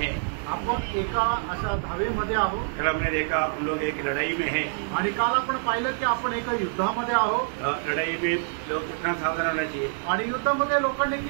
आपण एका अशा धावेमध्ये आहोत। कल हमने देखा हम लोग एक लड़ाई में हैं आणि काल आपण पाहिलं की आपण एका युद्धामध्ये आहोत। लड़ाई में लोग कितना सावधान होना चाहिए आणि युद्धामध्ये लोकांनी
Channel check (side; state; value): left; silent; digital silence